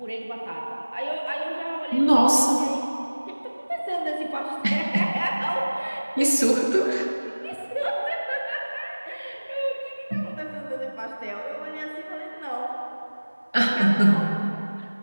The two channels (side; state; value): both; inverted; correlation -1.00